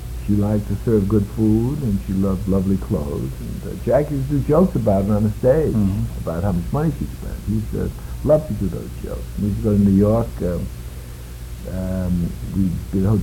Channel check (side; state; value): both; identical; correlation 1.00